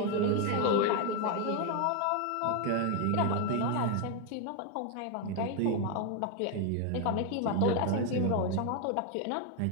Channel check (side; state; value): both; different; correlation 0.01